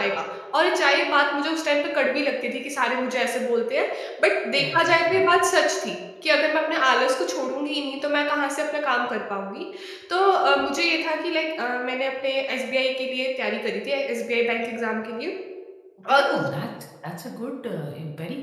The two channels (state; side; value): identical; both; correlation 1.00